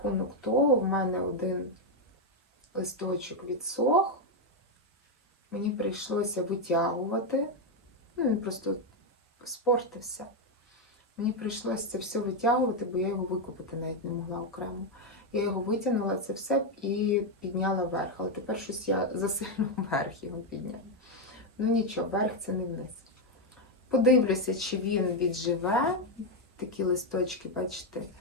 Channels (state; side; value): normal; both; correlation 0.04